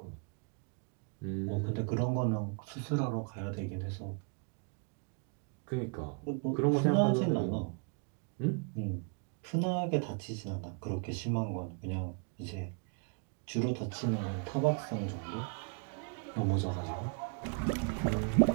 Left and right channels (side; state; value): left; quieter; 36.5 dB